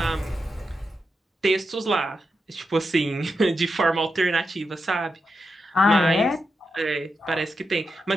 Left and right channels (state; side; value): normal; both; correlation 0.86